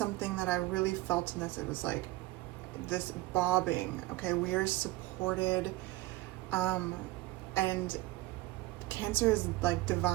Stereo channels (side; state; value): left; quieter; 18.7 dB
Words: that I really felt in this. It was like this bobbing. Okay, we are supported, and Cancer is like